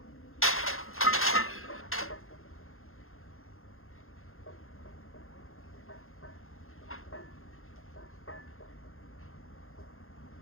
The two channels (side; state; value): right; late; 0.61 ms